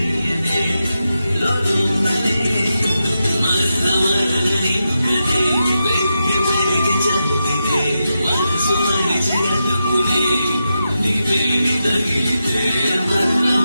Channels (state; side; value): inverted; both; correlation -0.88